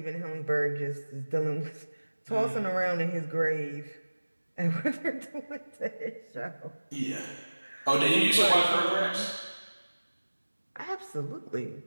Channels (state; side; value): inverted; both; correlation -1.00